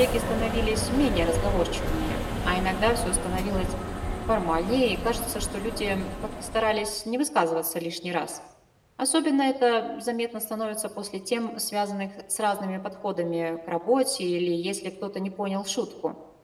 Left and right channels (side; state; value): both; identical; correlation 1.00